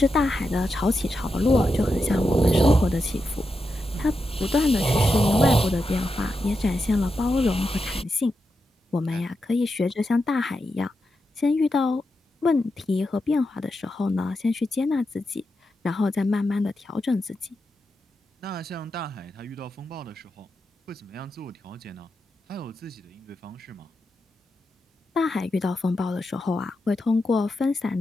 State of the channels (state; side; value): normal; both; correlation 0.87